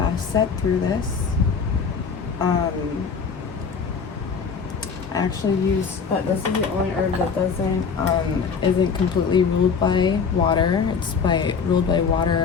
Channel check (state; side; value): quieter; right; 5.9 dB